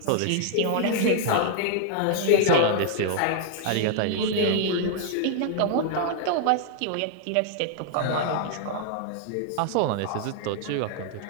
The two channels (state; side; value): different; both; correlation 0.00